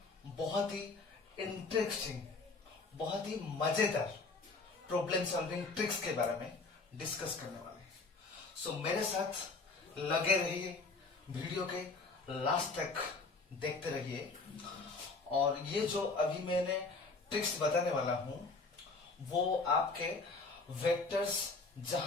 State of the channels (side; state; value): right; quieter; 3.8 dB